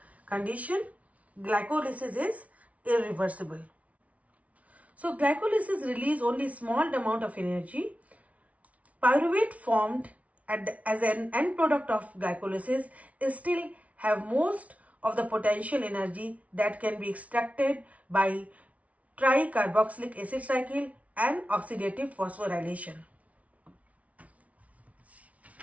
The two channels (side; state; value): left; late; 0.067 ms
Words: condition. Glycolysis is irreversible. So glycolysis release only small amount of energy. Pyruvate formed as an end product of glycolysis is still have most of the potential energy that can be extracted by tricarboxylic acid cycle and oxidative phosphorylation.